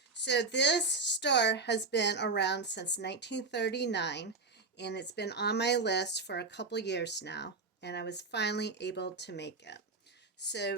So this store has been around since 1939, and it's been on my list for a couple years now, and I was finally able to make it.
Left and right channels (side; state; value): left; quieter; 3.9 dB